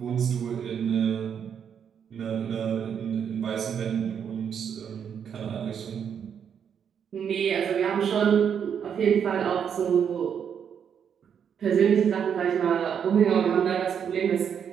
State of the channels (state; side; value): quieter; left; 7.8 dB